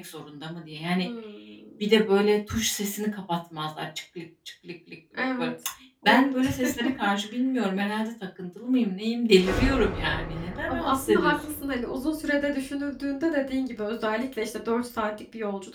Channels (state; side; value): identical; both; correlation 1.00